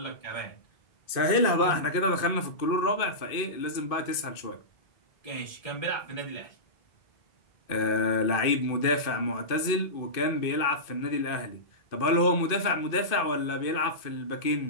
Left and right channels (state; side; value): late; right; 2.5 ms